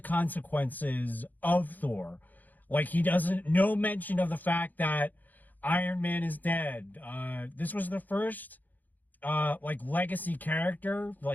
consequences of Thor. Like no mention of the fact that Iron Man is dead. This was the first like legacy character,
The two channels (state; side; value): late; right; 0.084 ms